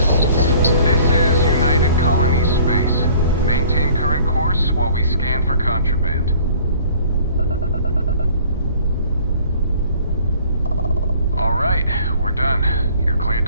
of that. This is United Colony Space. Maintain current course while we scan for contraband. All right, we're done. You're cleared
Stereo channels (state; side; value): inverted; both; correlation -0.53